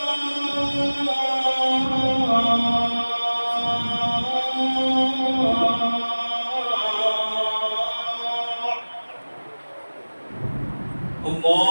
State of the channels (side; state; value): both; inverted; correlation -1.00